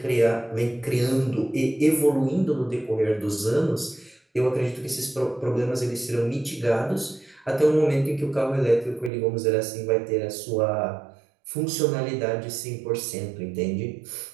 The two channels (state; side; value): drops out; left; at 9.1 s